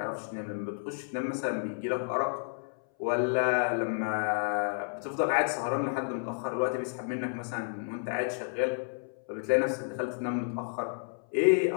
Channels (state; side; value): silent; right; 57 dB below the other